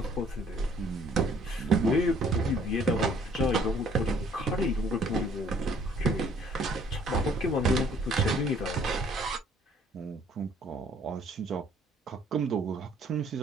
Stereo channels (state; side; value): normal; both; correlation 0.59